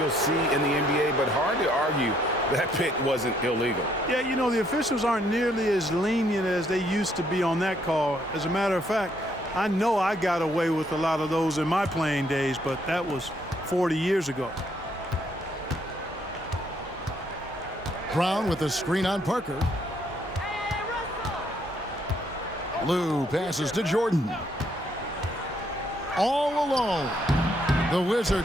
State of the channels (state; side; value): normal; both; correlation 0.70